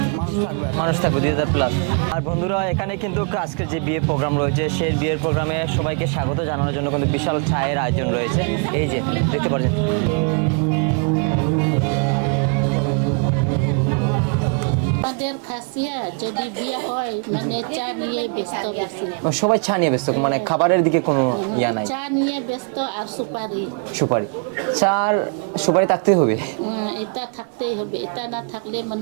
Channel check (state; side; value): quieter; left; 38.1 dB